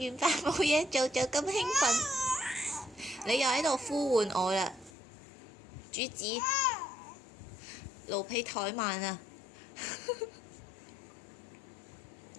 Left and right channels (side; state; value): right; drops out; at 4.9 s